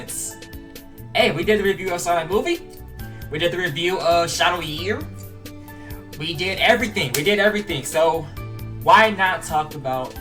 hey, we did the review of Sonic movie, we did the review of Shadow Year, we did everything, so why not talk about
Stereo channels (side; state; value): both; identical; correlation 1.00